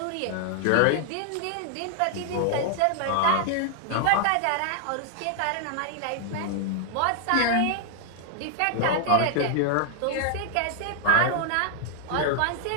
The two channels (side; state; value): both; different; correlation -0.01